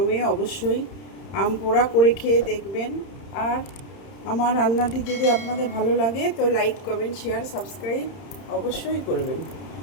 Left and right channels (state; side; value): late; right; 31 ms